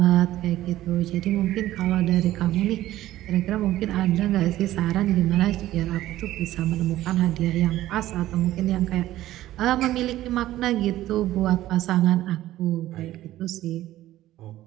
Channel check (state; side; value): quieter; left; 14.7 dB